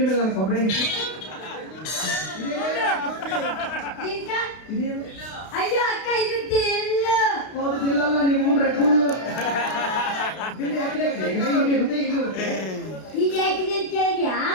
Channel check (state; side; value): late; right; 32 ms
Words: ಮೇಲೆ ನನ್ನ ಕೊಬ್ಬರಿ ಅಯ್ಯೋ ಅಕ್ಕ, ಇದು ತೆಲ್ಲ. ಹೌದು, ತಿಲ್ಲಲ್ಲ, ನಿಮ್ಮ ರೆಡ್ಬುಲ್ ತಿಂಡಿ ಹಾಕಿದೆ. ಇದು ಯಾಕಿದೆ ಅಂತ ಕೇಳಿದ್ಯಾ?